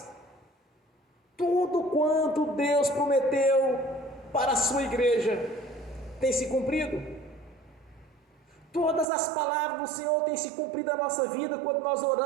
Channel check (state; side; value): drops out; left; at 9.1 s